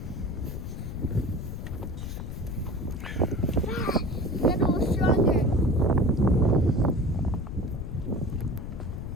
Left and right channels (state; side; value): noise; left; rumble, 7 dB below the sound